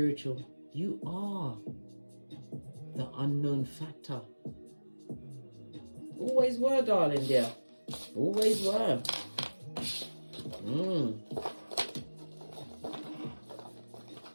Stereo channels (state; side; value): inverted; both; correlation -1.00